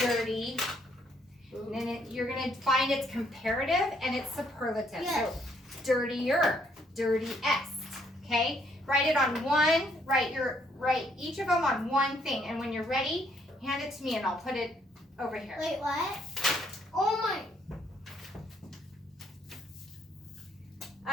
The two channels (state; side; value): normal; both; correlation 0.69